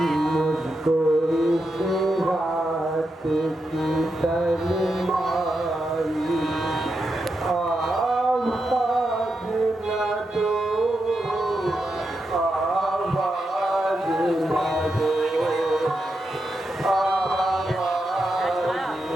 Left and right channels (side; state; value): both; normal; correlation 0.86